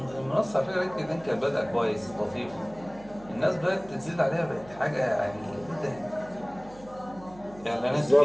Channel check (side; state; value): right; noise; hum, 20 dB below the sound